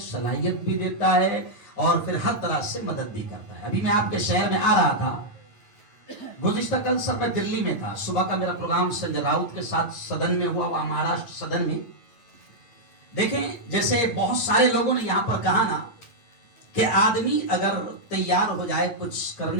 بھی دیتا ہے، اور پھر ہر طرح سے مدد بھی کرتا ہے۔ ابھی میں آپ کے شہر میں آ رہا تھا، گزشتہ کل سب میں دلی میں تھا، صبح کا میرا پروگرام سنجے راؤت کے ساتھ سدن میں ہوا، وہاں مہاراشٹر سدن میں۔ دیکھیں جیسے بہت سارے لوگوں نے یہاں پر کہا نا کہ آدمی اگر تیار ہو جائے کچھ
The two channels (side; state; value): right; late; 9.0 ms